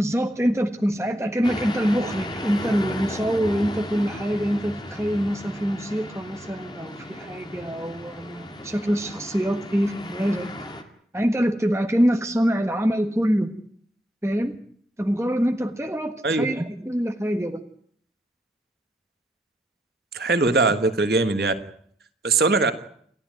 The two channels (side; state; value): both; normal; correlation 0.77